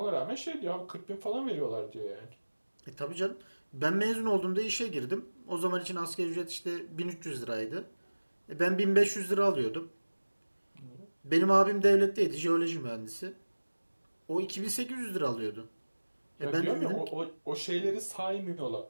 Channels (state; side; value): inverted; both; correlation -1.00